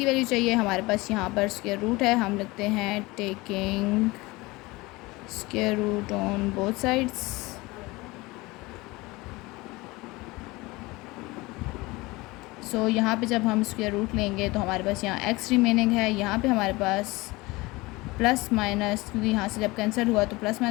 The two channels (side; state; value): right; quieter; 22.1 dB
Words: वैल्यू चाहिए, हमारे पास यहाँ पर स्क्वायर रूट है, हम लिखते हैं taking square root on both sides. So यहाँ पे जब हम स्क्वायर रूट लेंगे तो हमारे पास यहाँ x रिमेनिंग है, यहाँ पे हमारे पास प्लस माइनस, क्योंकि यहाँ से जब कैंसिल हुआ तो प्लस